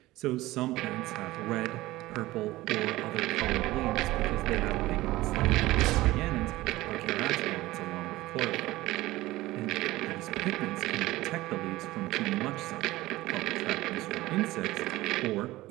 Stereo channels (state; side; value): quieter; left; 18.1 dB